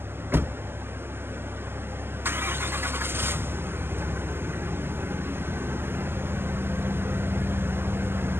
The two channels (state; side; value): late; left; 0.11 ms